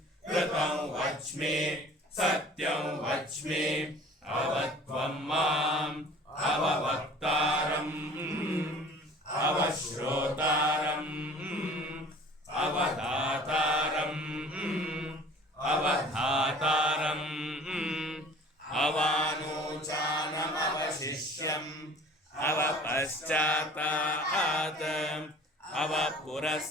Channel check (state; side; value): normal; both; correlation 0.47